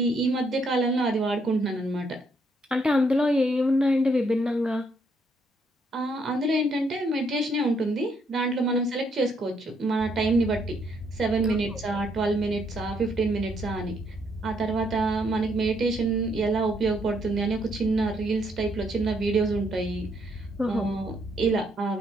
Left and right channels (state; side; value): normal; both; correlation 0.72